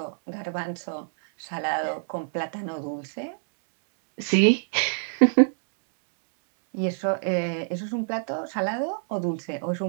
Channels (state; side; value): silent; left; digital silence